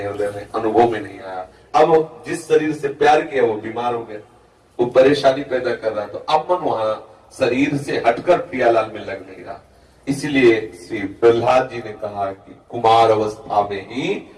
हृदय में अनुभव में नहीं आया। अब जिस शरीर से प्यार किया वो बीमार हो गया, वो परेशानी पैदा कर रहा, तो अब मन वहां शरीर से हटकर प्रियालाल में लग नहीं रहा। इसलिए श्री प्रहलाद जी ने कहा कि कुमार अवस्था में ही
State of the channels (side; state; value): both; identical; correlation 1.00